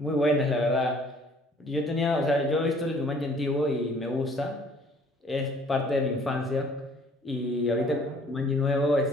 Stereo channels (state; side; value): normal; both; correlation 0.56